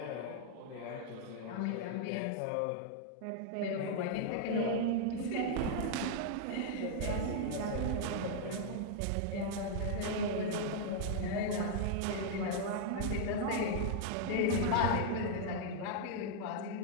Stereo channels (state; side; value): different; both; correlation -0.01